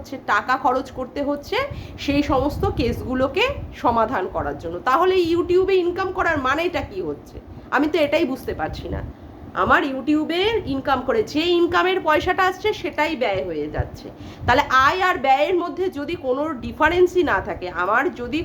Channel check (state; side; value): identical; both; correlation 1.00